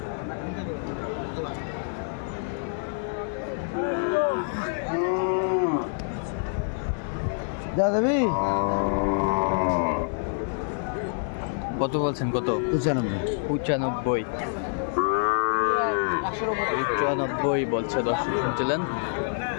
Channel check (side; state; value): right; silent; 58 dB below the other